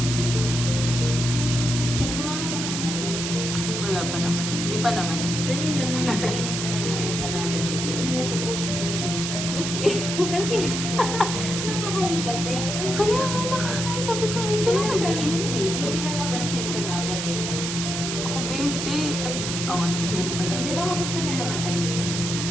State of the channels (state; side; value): noise; right; hiss, 3 dB below the sound